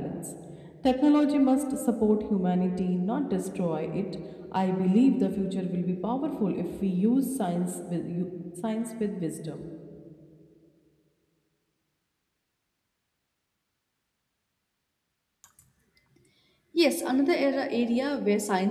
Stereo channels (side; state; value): both; identical; correlation 1.00